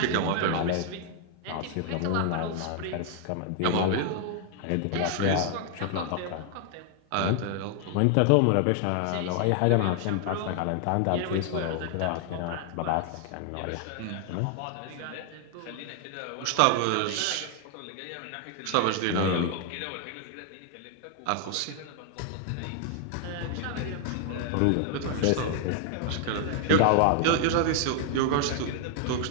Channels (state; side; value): different; both; correlation 0.00